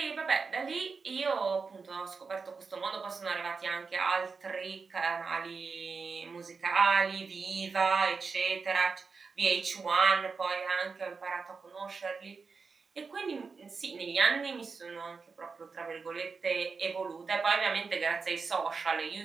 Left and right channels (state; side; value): quieter; left; 4.8 dB